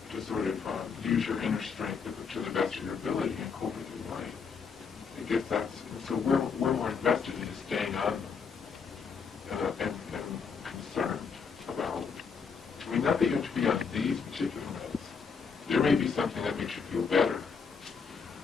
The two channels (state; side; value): quieter; right; 5.8 dB